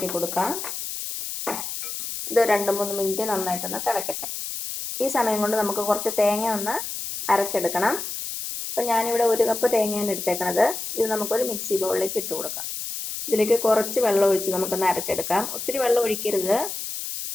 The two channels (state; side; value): noise; left; hiss, 6 dB below the sound